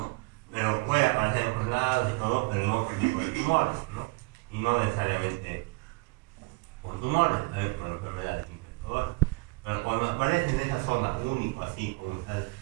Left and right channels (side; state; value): left; quieter; 27.2 dB